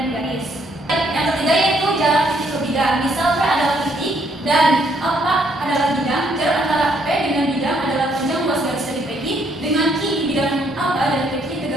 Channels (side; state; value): both; normal; correlation 0.69